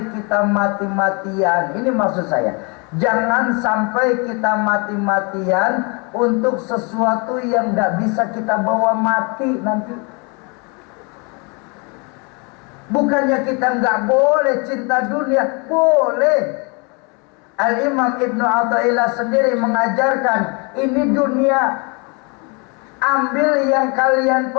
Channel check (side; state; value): right; quieter; 32.0 dB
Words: kita mati-matian. Ini maksud saya. Jangan sampai kita mati-matian untuk sesuatu yang tidak bisa kita bawa mati nanti. Bukannya kita nggak boleh cinta dunia, boleh. Al-Imam Ibnu Athaillah sendiri mengajarkan, ini dunia, ambil yang kalian